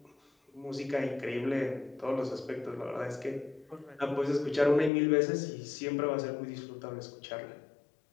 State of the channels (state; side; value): drops out; right; at 4.9 s